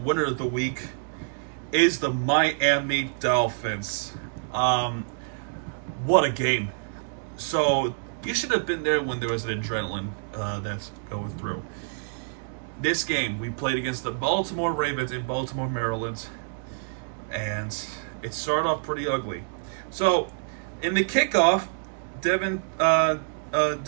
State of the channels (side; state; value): left; silent; digital silence